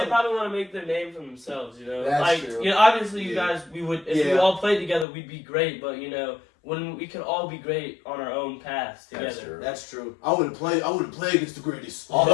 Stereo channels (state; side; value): drops out; right; at 5.1 s